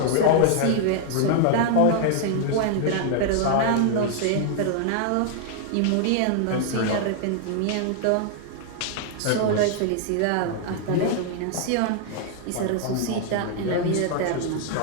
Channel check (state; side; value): different; both; correlation 0.00